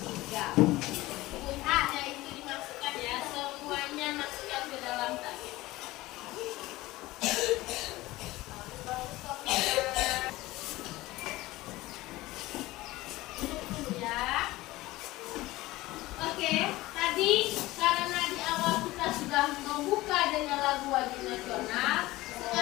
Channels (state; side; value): quieter; right; 18.6 dB